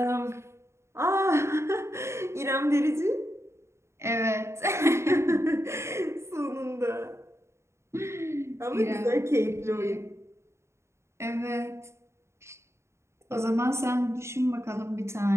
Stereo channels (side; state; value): left; late; 0.13 ms